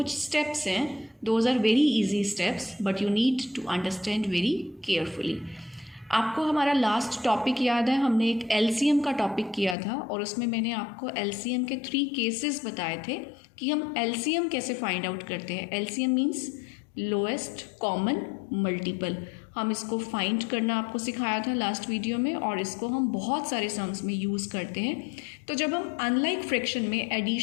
steps हैं. Those are very easy steps but you need to understand very carefully. आपको हमारा लास्ट टॉपिक याद है, हमने एक एलसीएम का टॉपिक किया था और उसमें मैंने आपको एलसीएम के 3 केसेस बताए थे कि हम एलसीएम कैसे फाइंड आउट करते हैं. LCM means lowest common multiple. हम इसको फाइंड करना आपको सिखाया था लास्ट वीडियो में और इसको हम बहुत सारे सम्स में यूज़ करते हैं. तो जब हम अनलाइक फ्रैक्शन में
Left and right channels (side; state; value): right; drops out; at 9.8 s